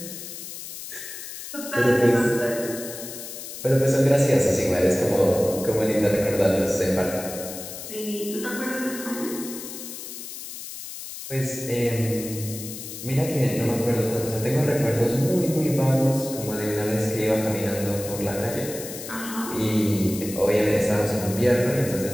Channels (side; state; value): left; noise; hiss, 10 dB below the sound